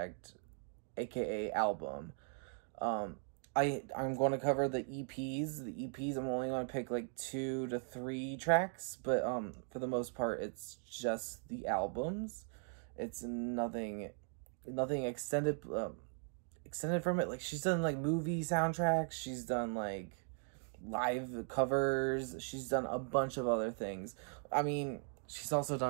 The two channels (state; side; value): silent; left; 52 dB below the other